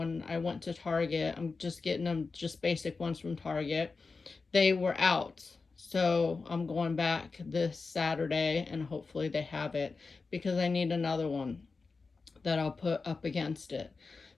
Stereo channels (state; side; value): quieter; right; 4.3 dB